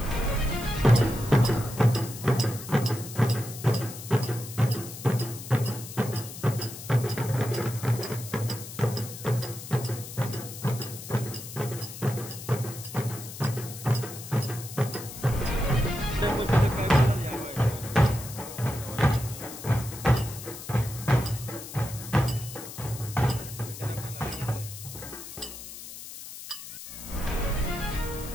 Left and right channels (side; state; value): left; noise; hiss, 12 dB below the sound